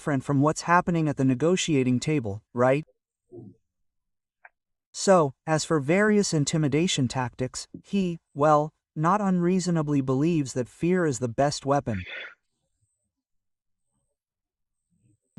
from what's happening at the negotiating table, right? So, as for various intimidation tactics, he, well, not unreasonably believes that fear is the best weapon.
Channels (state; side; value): identical; both; correlation 1.00